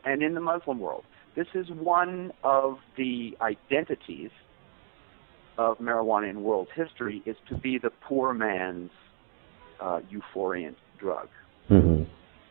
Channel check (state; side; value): silent; left; 58 dB below the other